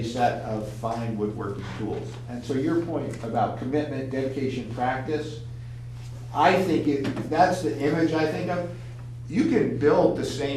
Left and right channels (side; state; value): both; identical; correlation 1.00